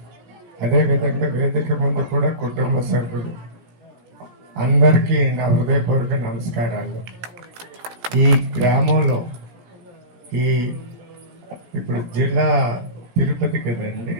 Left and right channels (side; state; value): left; late; 17 ms